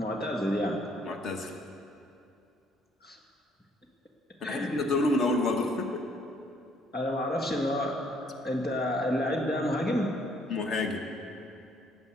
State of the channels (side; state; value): both; normal; correlation 0.65